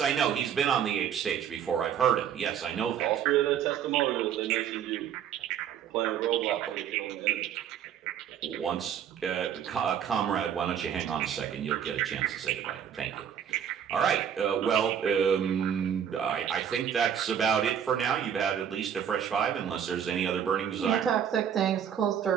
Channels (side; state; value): left; quieter; 8.8 dB